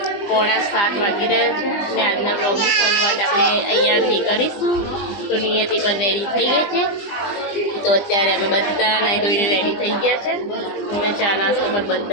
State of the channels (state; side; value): late; right; 20 ms